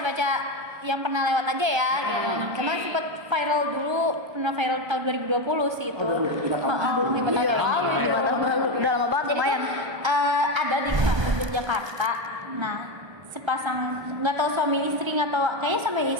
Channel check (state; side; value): late; left; 1.3 ms